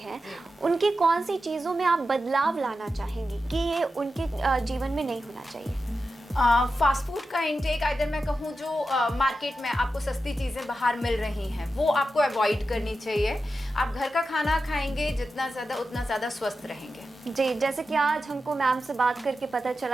उनकी कौन सी चीज़ों में आप बदलाव लाना चाहेंगी कि ये उनके जीवन में नहीं होना चाहिए? फास्ट फूड का इंटेक, अगर मैं कहूँ जो मार्केट में आपको सस्ती चीज़ें बाहर मिल रही हैं वो आपको अवॉइड करनी चाहिए। आप घर का खाना खाएंगे जितना ज़्यादा उतना ज़्यादा स्वस्थ रहेंगे। जी, जैसे कि आज हमको मैम से बात करके पता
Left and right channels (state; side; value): normal; both; correlation 0.91